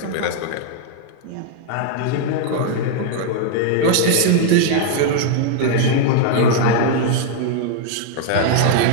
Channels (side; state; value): both; different; correlation 0.00